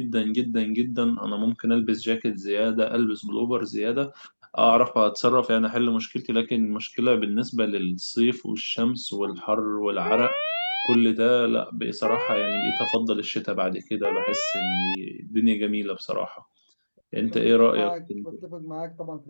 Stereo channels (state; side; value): inverted; both; correlation -1.00